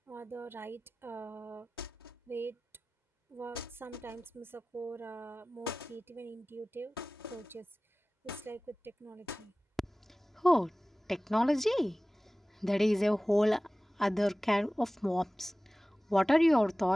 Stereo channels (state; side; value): normal; both; correlation 0.97